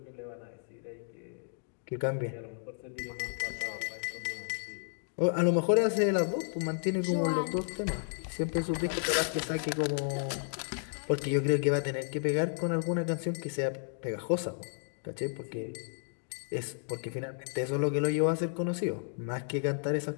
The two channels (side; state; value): right; silent; digital silence